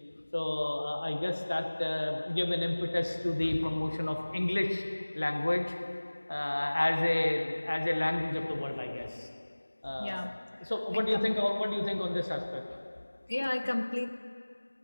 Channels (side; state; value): both; inverted; correlation -1.00